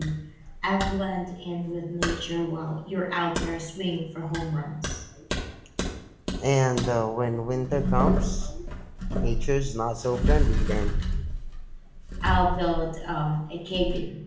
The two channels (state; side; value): identical; both; correlation 1.00